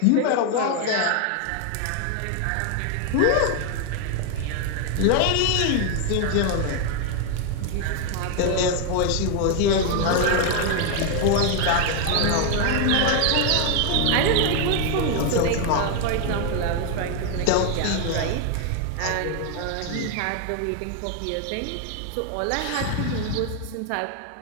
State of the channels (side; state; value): both; different; correlation 0.01